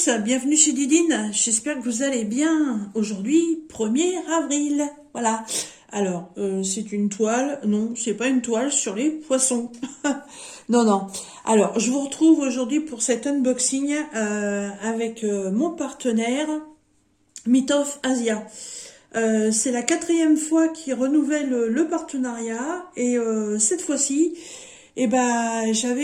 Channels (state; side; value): identical; both; correlation 1.00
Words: bienvenue chez Didine, j'espère que vous allez bien. Aujourd'hui, 1er avril, voilà. Alors, c'est une toile, non, c'est pas une toile sur les poissons. Non, non. Alors, je vous retrouve aujourd'hui pour cet unboxing avec mon partenaire, Mitov Asia. C'est la 4e fois qu'il renouvelle le partenariat et cette fois-ci,